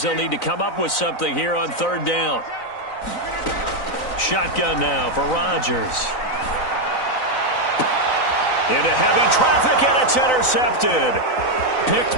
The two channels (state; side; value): late; right; 3.9 ms